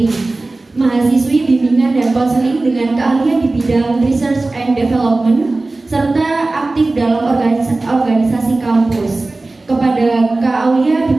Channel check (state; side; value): quieter; left; 3.2 dB